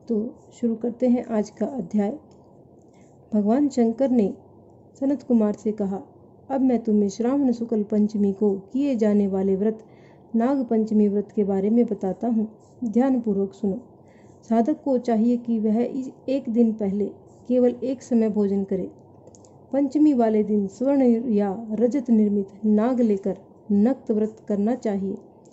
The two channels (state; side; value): identical; both; correlation 1.00